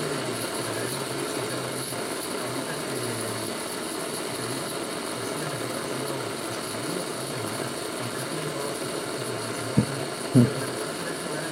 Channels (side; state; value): both; identical; correlation 1.00